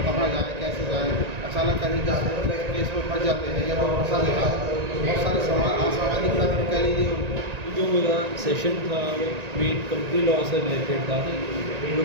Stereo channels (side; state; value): left; late; 1.9 ms